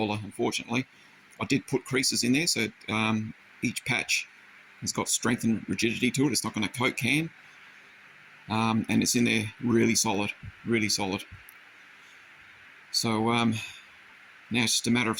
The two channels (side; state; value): both; identical; correlation 1.00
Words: unfortunately. I did put creases in there, so each patch has got strength and rigidity to it. It's not going to coat can. And it's in there really solid, really solid. So now it's just a matter of